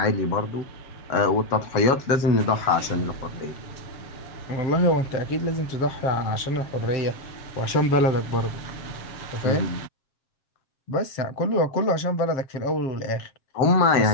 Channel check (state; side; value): late; right; 7.3 ms